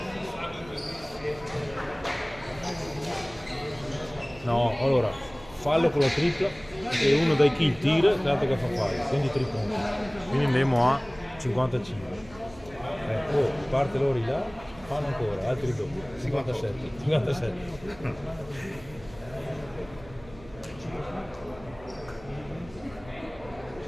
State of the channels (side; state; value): right; noise; hum, 20 dB below the sound